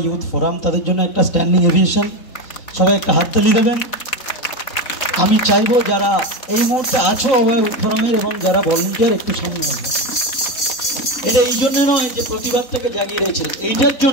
ইউথ ফোরাম তাদের জন্য একটা স্ট্যান্ডিং এভিয়েশন সবাই একটা হাততালি দেবেন আমি চাইবো যারা এই মুহূর্তে আছো অভয়া ইউথ ফোরামের এবং যারা ভলান্টিয়ার একটু সামনে আসবেন এটা এই জন্য নয় যে প্রতিবাদটাকে জাগিয়ে রয়েছে এইটার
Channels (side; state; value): right; late; 3.9 ms